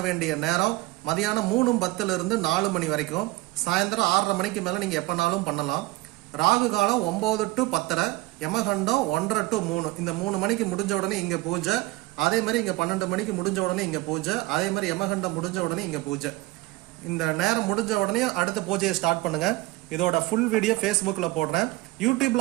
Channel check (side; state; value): left; quieter; 20.0 dB